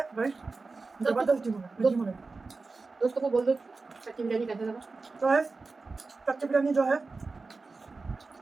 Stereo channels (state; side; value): quieter; left; 3.9 dB